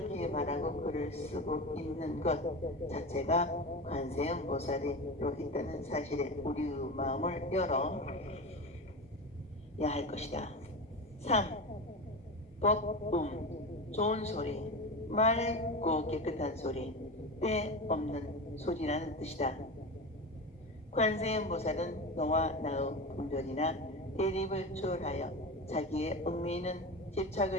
말하고 글을 쓰고 있는 것 자체가 관세음보살이로 있다는 사실에 우리의 마음을 열어야 할 것이다. 3. 법음, 좋은 소리, 맑고 깨끗한 소리, 때 없는 소리라는 뜻이다. 관세음보살은 너와 나의 분별이나 대립을 초월하여 자기의 얽매이는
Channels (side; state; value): both; normal; correlation 0.25